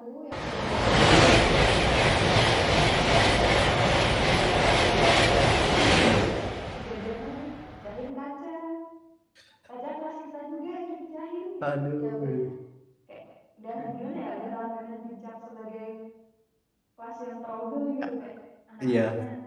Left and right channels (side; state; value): both; identical; correlation 1.00